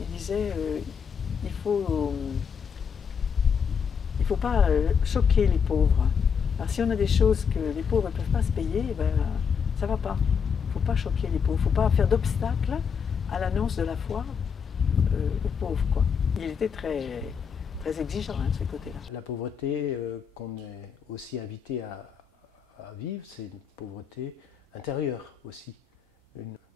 disait il faut pas choquer les pauvres. Alors, si on a des choses que les pauvres ne peuvent pas se payer, ben, ça ne va pas. Il ne faut pas choquer les pauvres. Il ne faut pas faire d'obstacle à l'annonce de la foi aux pauvres, quoi. Il était très, très exigeant de ce côté-là. La pauvreté qu'on est aussi invité à vivre, c'est une pauvreté intérieure aussi. De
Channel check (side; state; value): right; quieter; 6.7 dB